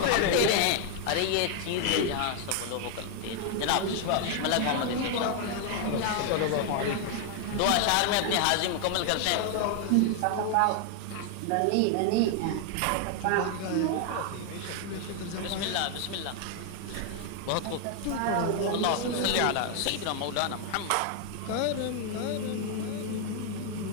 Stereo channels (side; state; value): both; different; correlation 0.00